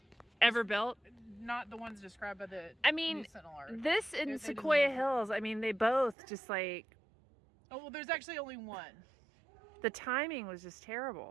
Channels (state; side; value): drops out; left; at 6.2 s